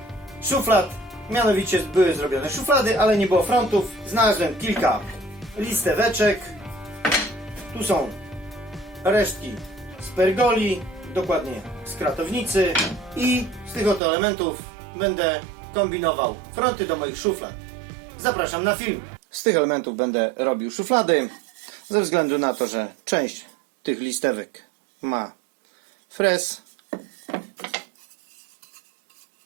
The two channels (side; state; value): left; drops out; at 14.0 s